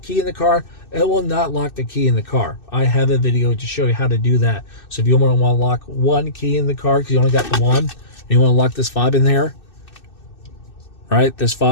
in the car, it will not lock the key in the car. I have a video to show you how to do that. So if you want to lock one key in the car because you only got the one, and you want to lock this fob in there, right? This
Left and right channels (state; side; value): late; right; 2.6 ms